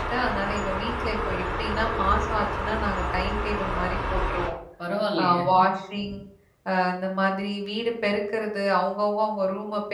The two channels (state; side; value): identical; both; correlation 1.00